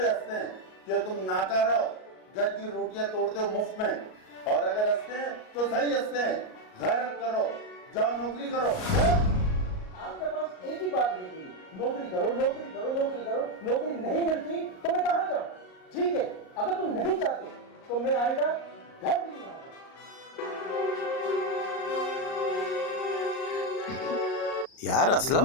हंसते हैं कि तुम नाकारा हो, घर की रोटियां तोड़ते हो मुफ्त में। और अगर हंसते हैं तो सही हंसते हैं। गैरत करो, जाओ नौकरी करो। आपके पास एक ही बात रहती है, नौकरी करो, नौकरी करो, नौकरी करो। नौकरी नहीं मिलती तो मैं कहाँ जाऊँ? ठीक है, अगर तुम नहीं चाहते तो मैं आएगा, घर भी नहीं आऊंगा। यार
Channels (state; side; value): late; right; 38 ms